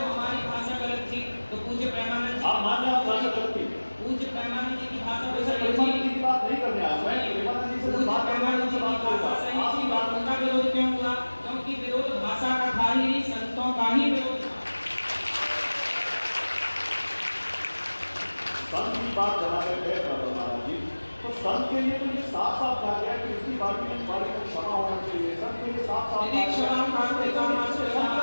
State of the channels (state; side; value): inverted; both; correlation -1.00